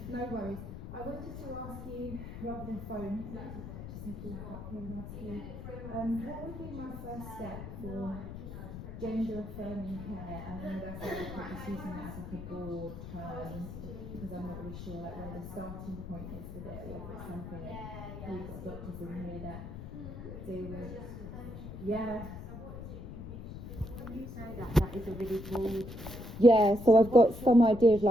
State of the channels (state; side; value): noise; left; rumble, 10 dB below the sound